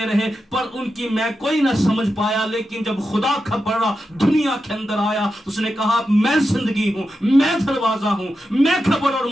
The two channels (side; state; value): both; normal; correlation 0.89